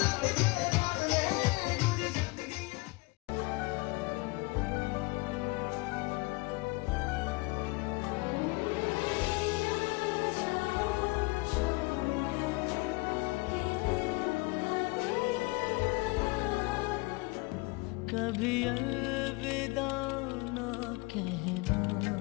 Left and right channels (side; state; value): right; quieter; 25.5 dB